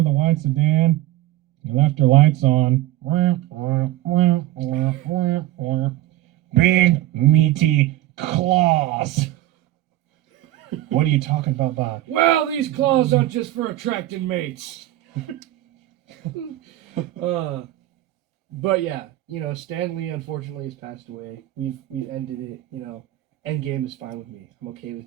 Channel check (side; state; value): left; quieter; 15.1 dB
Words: the white sedan, you left your lights on. Big meaty claws. What are you talking about, Bob? Well, these claws aren't just for attracting mates. But yeah, Stan Lee unfortunately has passed away. We've ended it. Endgame is fine with me. I'm okay with